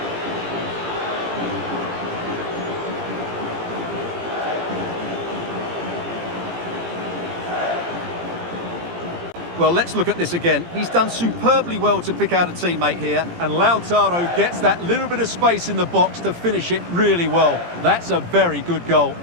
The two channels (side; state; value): left; late; 17 ms